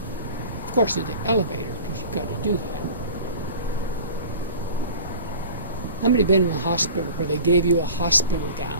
Of course, in the elevator, because you've got to do that. How many been in the hospital where they gave you a hospital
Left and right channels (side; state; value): both; inverted; correlation -0.39